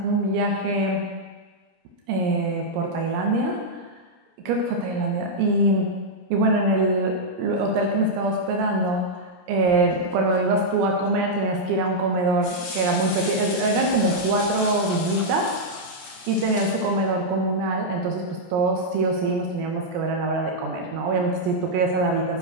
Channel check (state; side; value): late; left; 17 ms